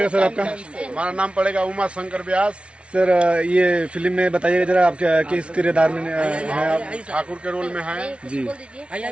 सर आपका? हमारा नाम पड़ेगा उमा शंकर व्यास। सर ये फिल्म में बताइएगा जरा, आप किस किरदार में हैं? आप ठाकुर के रोल में हैं जी।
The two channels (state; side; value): late; left; 0.060 ms